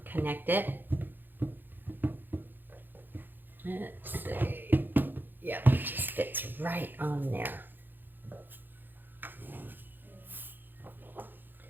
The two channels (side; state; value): left; late; 0.092 ms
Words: connect it. Let's see. Yeah, it just fits right on there.